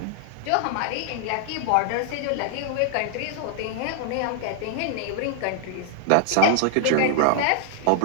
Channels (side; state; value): both; different; correlation -0.01